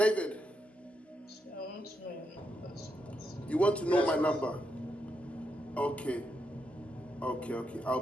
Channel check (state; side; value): normal; both; correlation 0.82